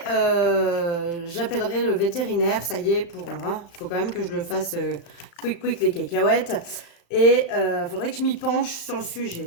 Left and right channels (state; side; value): late; right; 35 ms